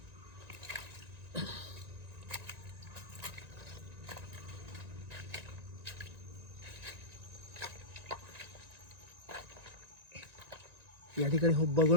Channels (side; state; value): left; late; 1.9 ms